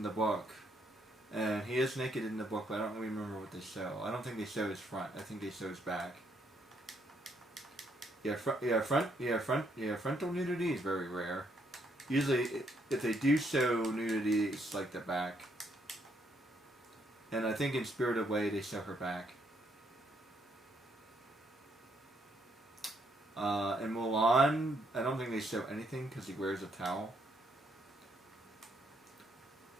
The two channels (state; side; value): normal; both; correlation 0.73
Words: the book. And he is naked in the book, but I don't remember what they show. I don't think they show his front. I think they show his back. Frontal nudity is very rare. Usually, if they do show nudity, it's like the back. And I think in Spirited Away, they show her back. In Mulan, I don't think they show anything because he wears a towel.